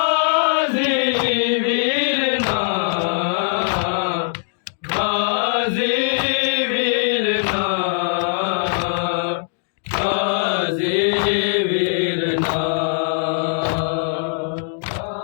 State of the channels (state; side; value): silent; right; digital silence